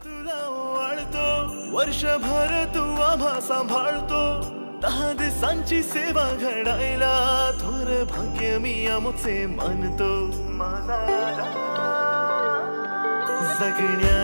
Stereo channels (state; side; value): inverted; both; correlation -1.00